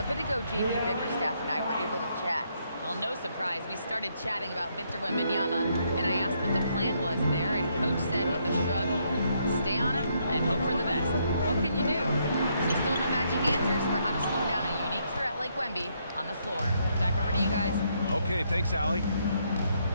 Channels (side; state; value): both; inverted; correlation -0.74